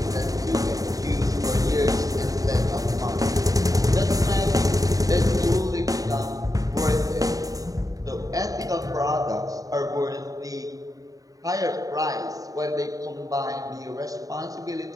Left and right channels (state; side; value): late; left; 0.17 ms